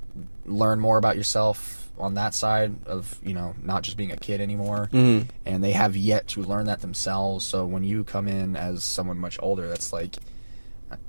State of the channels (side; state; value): both; inverted; correlation -1.00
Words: learn more about yourself on that side of not just being a kid anymore. Mm-hmm. And they have yet to learn that themselves. So when you come in as someone much older, that's like